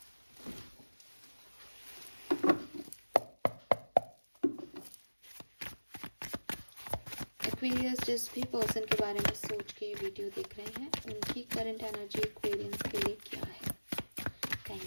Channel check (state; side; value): inverted; both; correlation -1.00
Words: एक्वेरियस जिस भी पर्सन के बारे में सोच के ये वीडियो देख रहे हैं उनकी करंट एनर्जी एक्वेरियस के लिए क्या है।